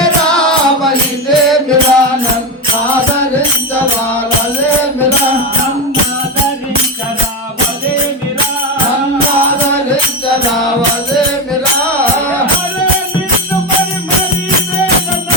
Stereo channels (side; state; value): both; normal; correlation 0.15